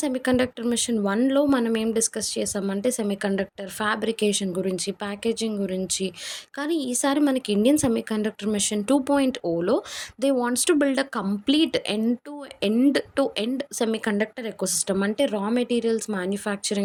semiconductor mission 1లో మనం ఏం డిస్కస్ చేసామంటే సెమీ కండక్టర్ ఫ్యాబ్రికేషన్ గురించి, ప్యాకేజింగ్ గురించి. కానీ ఈసారి మనకి ఇండియన్ సెమీ కండక్టర్ మిషన్ 2.0లో they wants to build a complete end semiconductor ecosystem. అంటే రా మెటీరియల్స్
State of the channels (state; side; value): identical; both; correlation 1.00